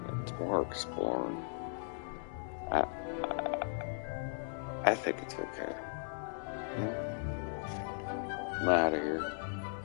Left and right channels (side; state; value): right; silent; digital silence